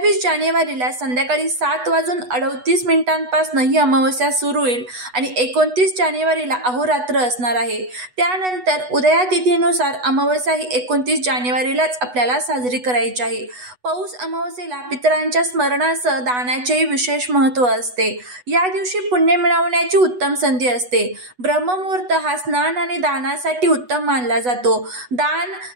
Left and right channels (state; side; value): late; left; 8.1 ms